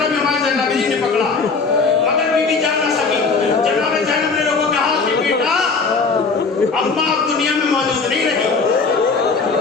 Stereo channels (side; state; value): right; quieter; 4.5 dB